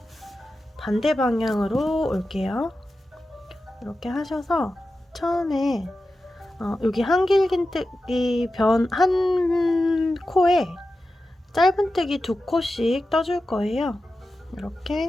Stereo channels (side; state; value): both; normal; correlation 0.92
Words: 반대 방향으로 올게요. 이렇게 하셔서 처음에 여기 한길긴뜨기 한 코에 짧은뜨기 2코씩 떠줄 거예요.